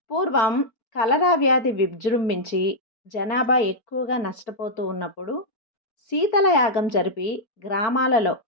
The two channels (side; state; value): right; late; 4.6 ms